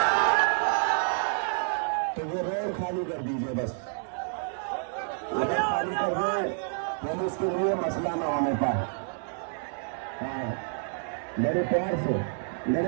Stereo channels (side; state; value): left; silent; digital silence